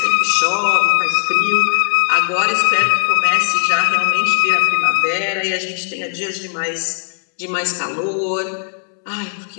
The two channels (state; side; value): silent; right; 56 dB below the other